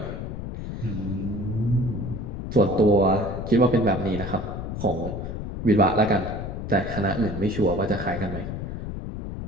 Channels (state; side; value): noise; left; rumble, 6 dB below the sound